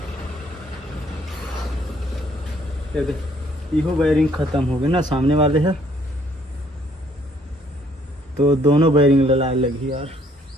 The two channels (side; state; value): both; normal; correlation 0.64